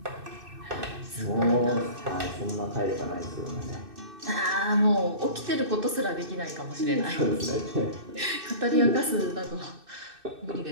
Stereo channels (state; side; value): late; left; 2.6 ms